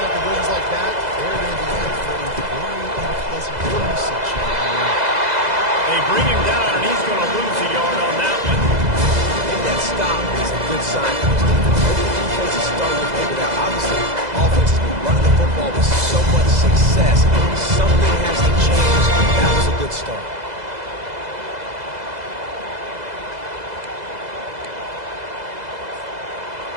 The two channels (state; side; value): late; left; 2.0 ms